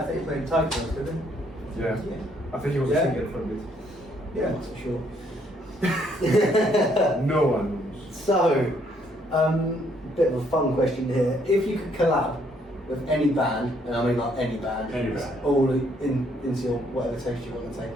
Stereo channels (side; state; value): both; normal; correlation 0.68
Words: think he played Tiger Tails, didn't he? Yeah. I think he was a singer for a bit. Yeah. Not so sure. No one knows. So, bit of a fun question here. If you could collab with any band, and I mean like any band, all into your whatever taste you want to take